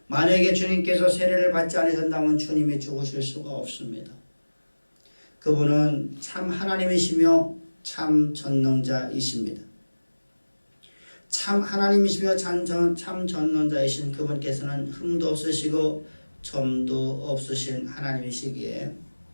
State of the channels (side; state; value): both; inverted; correlation -1.00